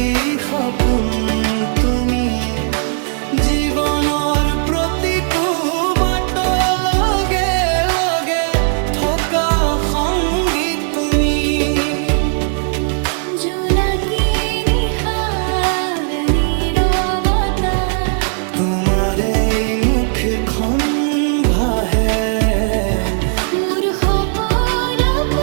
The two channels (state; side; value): silent; left; 55 dB below the other